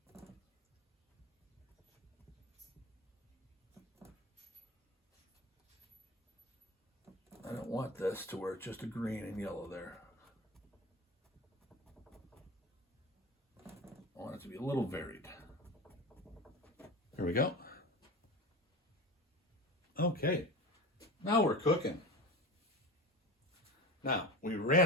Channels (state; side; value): normal; both; correlation 0.29